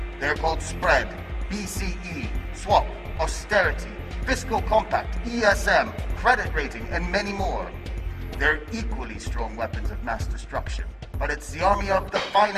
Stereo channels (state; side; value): identical; both; correlation 1.00